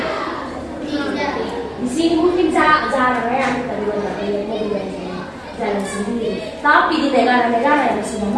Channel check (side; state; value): both; identical; correlation 1.00